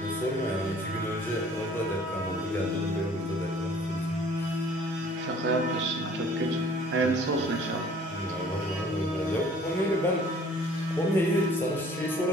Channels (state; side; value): normal; both; correlation 0.53